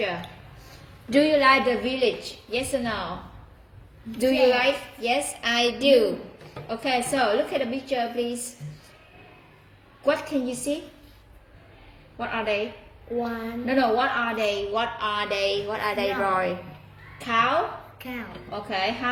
Do you like the village? Yes or no? Do you like? Yes, I do. Okay, so look at the picture, please. What can you see? What are they? One No, what are they? What are they? What are they, No. Roy? Cow? cow. Okay, how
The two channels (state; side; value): identical; both; correlation 1.00